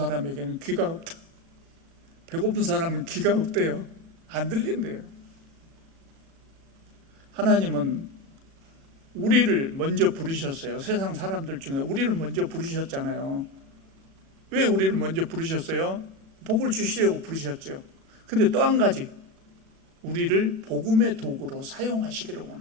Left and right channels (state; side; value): late; left; 36 ms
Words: 귀가 없다. 배고픈 사람은 귀가 없대요. 안 들린대요. 하나님은 우리를 먼저 부르셨어요. 세상 사람들 중에 우리를 먼저 부르셨잖아요. 왜 우리를 먼저 부르셨어요? 복을 주시려고 부르셨죠. 근데 또 한 가지, 우리를 복음의 도구로 사용하시기를